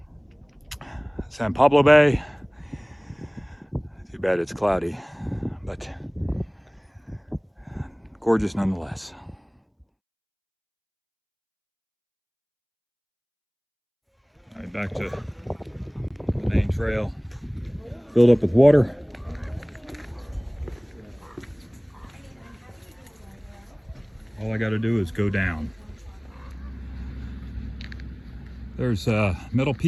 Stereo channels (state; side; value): identical; both; correlation 1.00